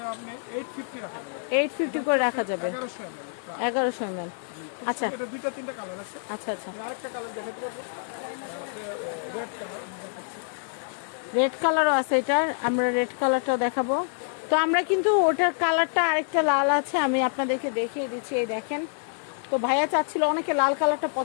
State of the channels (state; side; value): silent; right; digital silence